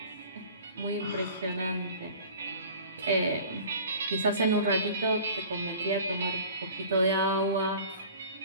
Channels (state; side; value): inverted; both; correlation -0.43